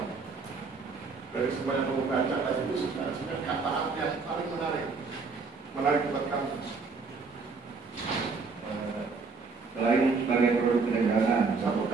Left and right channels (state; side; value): quieter; left; 4.6 dB